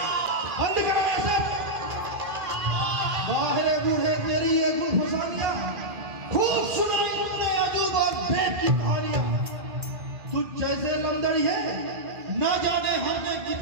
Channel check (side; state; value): left; late; 2.1 ms